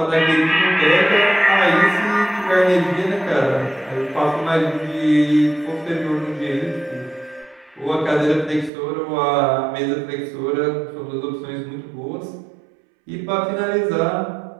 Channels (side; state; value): left; drops out; at 8.7 s